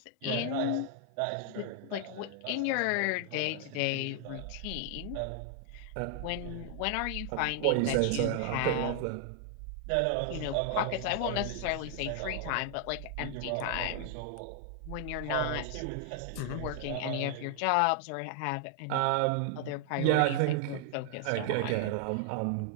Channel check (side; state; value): both; different; correlation 0.00